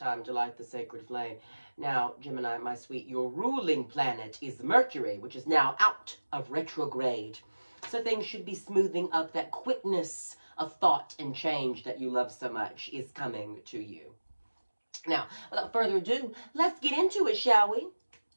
to light the sacred flame. Now, Gemini, my sweet, your ruling planet is Mercury, which is now out of retrograde. So things should be smoothing up. That quickness of thought and change that you love so much is coming to you. Now, without further ado, let's get into it, shall we?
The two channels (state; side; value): inverted; both; correlation -1.00